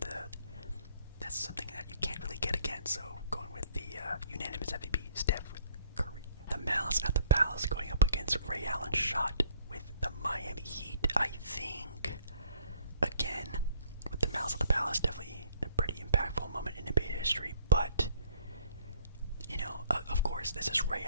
that's something that you can't really get again. So going with the unanimous MVP, Steph Curry. The Malice at the Palace going up against Ray Allen's shot with the Miami Heat. I think, again, with the Malice at the Palace, definitely a pretty impactful moment in NBA history. But, you know, of course, this is Ray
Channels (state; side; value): inverted; both; correlation -0.60